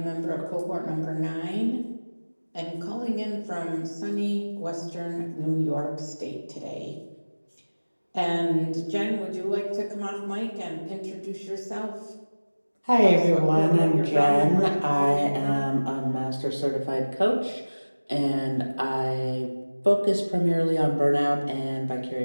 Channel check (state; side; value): inverted; both; correlation -1.00